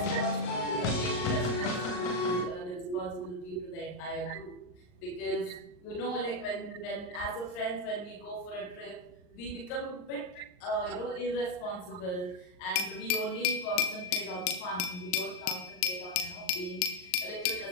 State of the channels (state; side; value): late; right; 39 ms